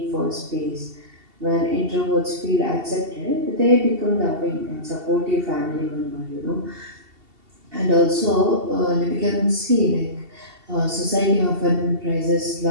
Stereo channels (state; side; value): late; left; 2.7 ms